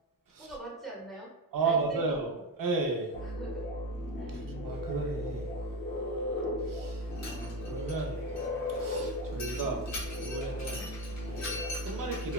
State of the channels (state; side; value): normal; both; correlation 0.17